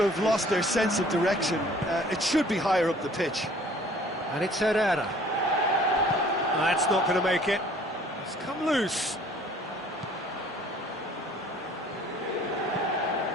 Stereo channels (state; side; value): normal; both; correlation 0.54